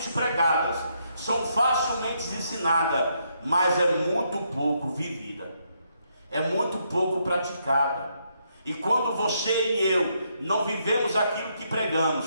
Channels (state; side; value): inverted; both; correlation -0.76